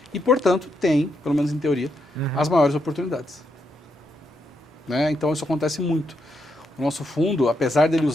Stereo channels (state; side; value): normal; both; correlation 0.80